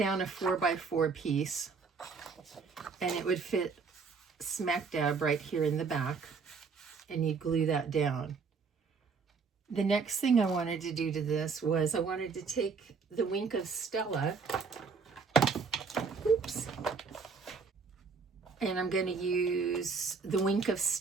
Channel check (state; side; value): quieter; left; 5.1 dB